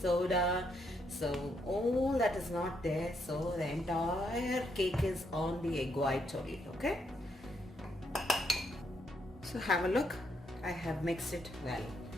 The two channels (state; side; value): normal; both; correlation 0.76